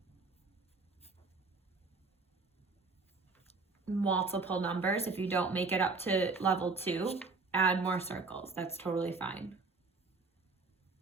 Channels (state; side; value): quieter; left; 4.0 dB